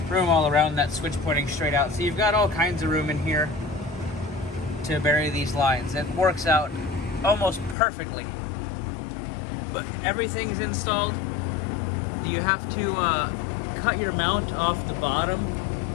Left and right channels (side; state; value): right; drops out; at 7.8 s